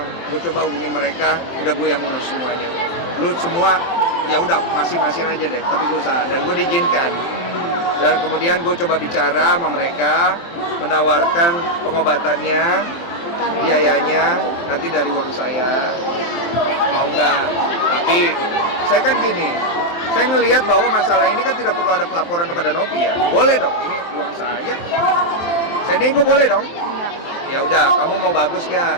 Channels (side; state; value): right; late; 23 ms